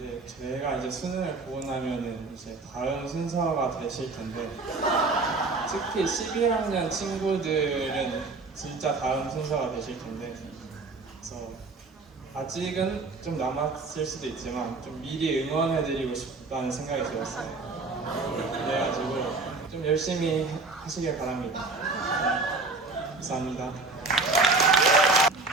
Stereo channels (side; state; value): left; quieter; 3.7 dB